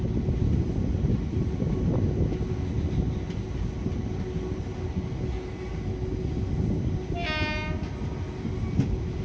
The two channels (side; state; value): both; identical; correlation 1.00